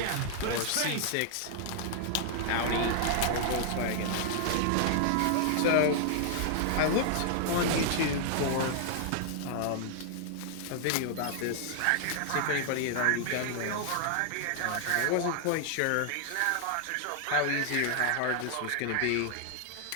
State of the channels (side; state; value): both; different; correlation 0.00